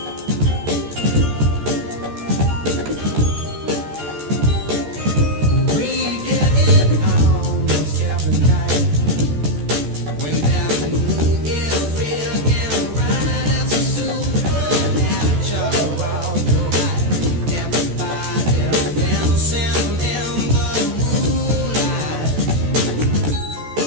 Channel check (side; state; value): left; late; 14 ms